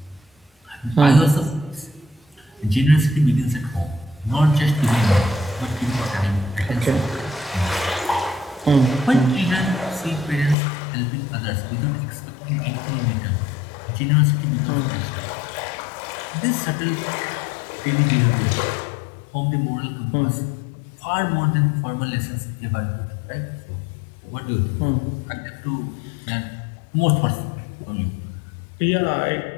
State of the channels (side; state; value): right; drops out; at 10.6 s